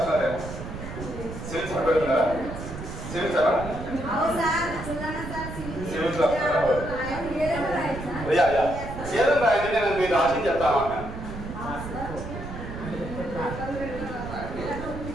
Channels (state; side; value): noise; right; rumble, 9 dB below the sound